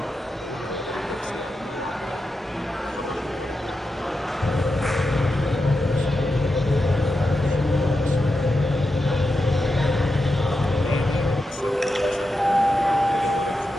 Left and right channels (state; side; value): normal; both; correlation 0.88